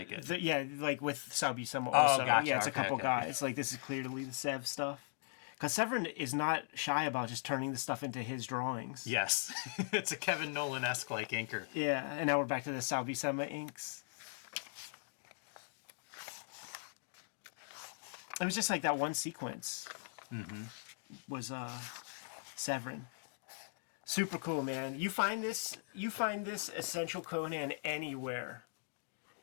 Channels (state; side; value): silent; right; digital silence